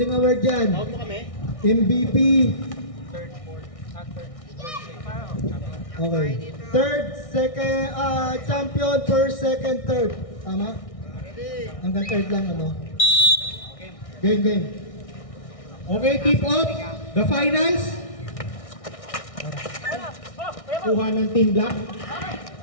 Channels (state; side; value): late; right; 1.6 ms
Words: award dyan. MVP. Okay. Third, second, champion, first, second, third. Tama? Hanggang third lang ano. Game. Okay, tip off. The finals. Kuha ng Team Black.